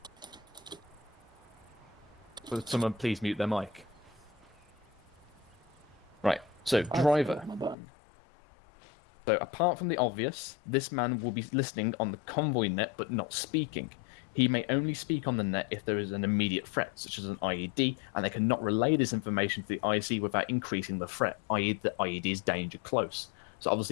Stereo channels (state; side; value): drops out; right; at 7.8 s